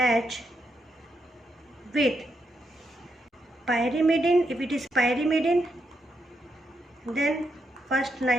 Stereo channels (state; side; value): normal; both; correlation 0.81